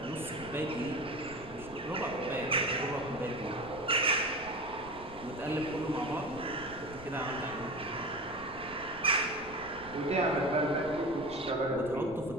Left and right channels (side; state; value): left; noise; rumble, 18 dB below the sound